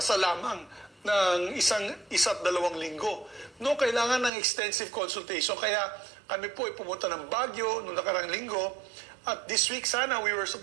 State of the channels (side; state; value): left; drops out; at 4.3 s